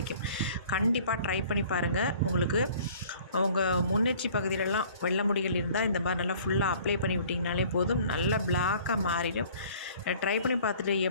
கண்டிப்பாக ட்ரை பண்ணி பாருங்கள். உங்களுக்கு உங்கள் முன்னெச்சி பகுதியிலலாம் வெள்ளை முடிகள் இருந்தால் இந்த மாதிரி நல்லா ஃபுல்லாக அப்ளை பண்ணி விட்டிங்கனாலே போதும், நல்லா பிளாக்காக மாறிடும். ட்ரை பண்ணி பார்த்துட்டு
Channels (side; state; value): both; inverted; correlation -0.51